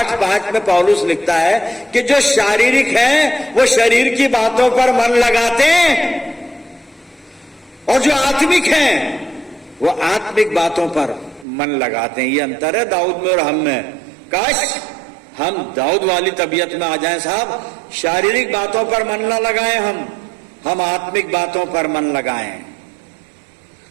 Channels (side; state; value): left; drops out; at 11.5 s